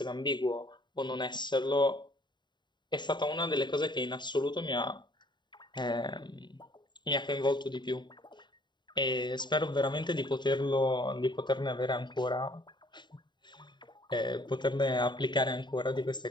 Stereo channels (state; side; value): late; right; 0.22 ms